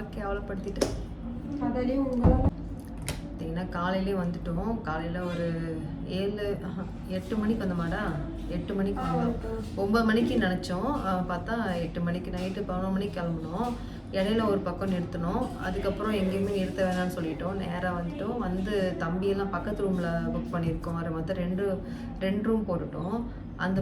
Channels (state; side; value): identical; both; correlation 1.00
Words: கேவலப்படுத்திட்டேன். பார்த்தீங்கன்னா காலையிலே வந்துட்டோம். காலையில் ஒரு 8 மணிக்கு வந்தோமாடா. 8 மணிக்கு வந்தோம். 9 மணிக்கு நினச்சோம். பார்த்தா 8 மணிக்கு நைட்டு 11 மணிக்கு கிளம்புனோம். இடையில ஒரு பக்கம் நிறுத்தினோம். அதுக்கப்புறம் எங்கேயுமே நிறுத்த வேணாம்னு சொல்லிட்டோம். நேராக வந்துட்டோம். வந்து தம்பியெல்லாம் பக்கத்து ரூமில் புக் பண்ணியிருக்கோம். அதை மொத்தம் ரெண்டு ரூம் போட்டுட்டோம். அந்த